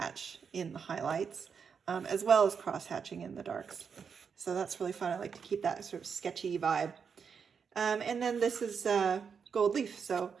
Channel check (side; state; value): left; quieter; 6.4 dB